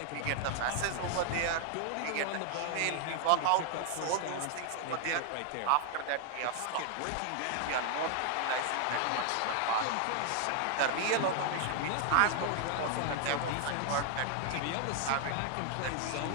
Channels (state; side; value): different; both; correlation 0.00